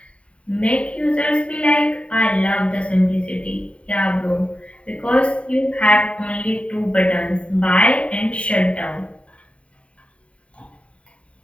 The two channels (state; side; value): late; right; 0.062 ms